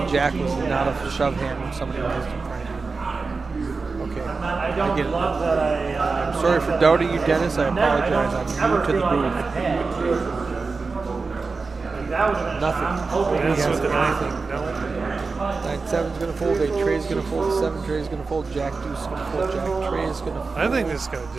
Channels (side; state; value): left; quieter; 4.3 dB